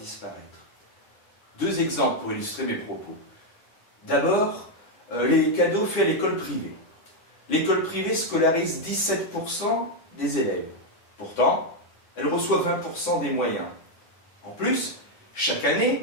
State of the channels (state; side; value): late; right; 9.6 ms